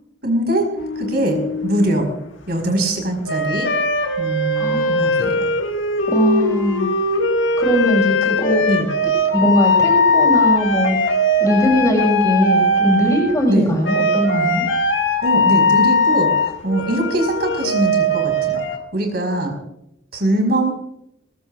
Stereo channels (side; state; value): both; normal; correlation 0.06